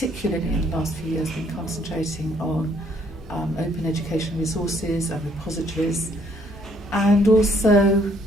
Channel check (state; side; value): normal; both; correlation 0.65